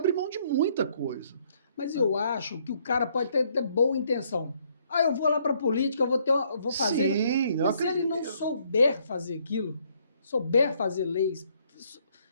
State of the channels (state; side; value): inverted; both; correlation -0.68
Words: mão de muita coisa. Mas eu acho que o cara pode ter boa intenção. Eu vou lá para a política, eu vou fazer... Sim, mas se ele não souber fazer aquilo, souber fazer leis,